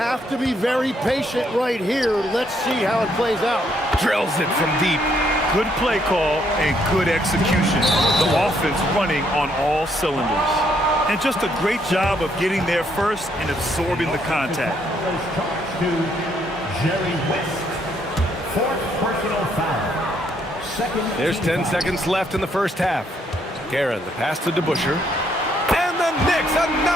to be very patient right here. Let's see how it plays out. Drills it from deep. Good play call and good execution. The offense running on all cylinders. And just a great job of getting there first and absorbing the contact. There's 10 seconds left in the first half. Guerin, the pass to DeBusschere. And the Knicks,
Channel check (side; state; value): both; normal; correlation 0.71